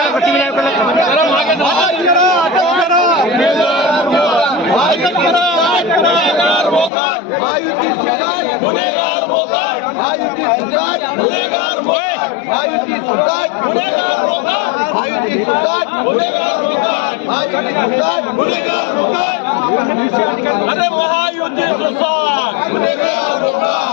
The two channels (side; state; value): right; drops out; at 6.9 s